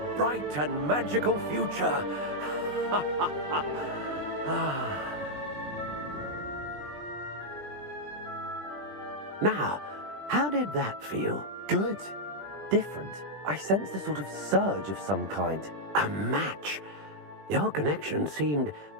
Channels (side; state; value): left; late; 20 ms